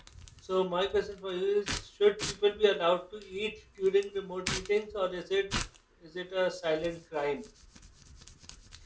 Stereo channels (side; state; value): both; identical; correlation 1.00